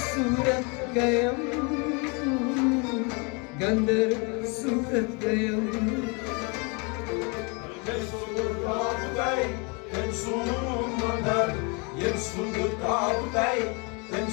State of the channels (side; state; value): right; quieter; 31.9 dB